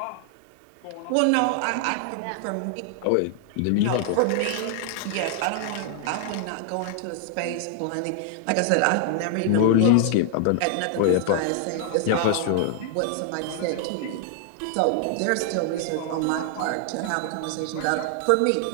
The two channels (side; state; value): both; different; correlation 0.00